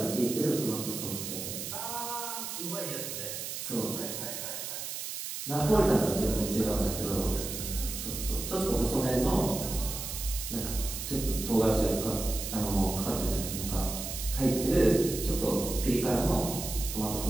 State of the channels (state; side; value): noise; right; hiss, 6 dB below the sound